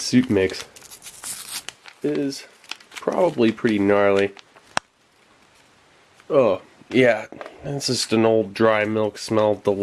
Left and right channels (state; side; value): identical; both; correlation 1.00